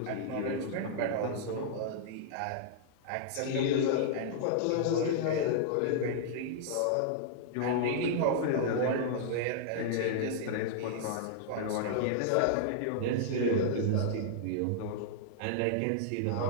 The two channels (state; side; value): different; both; correlation -0.01